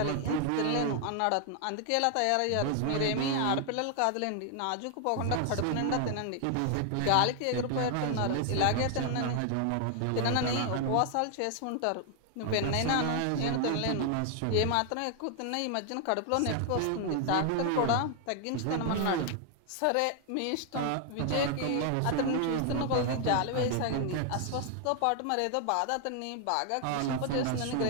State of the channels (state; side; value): different; both; correlation 0.00